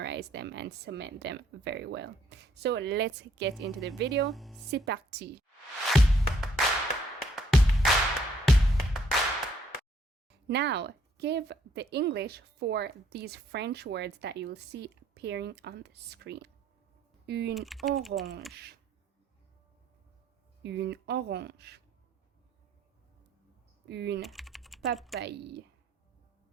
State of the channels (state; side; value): normal; both; correlation 0.67